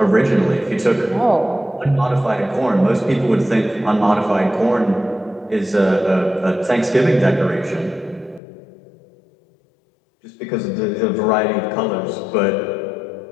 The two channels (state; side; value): drops out; right; at 8.4 s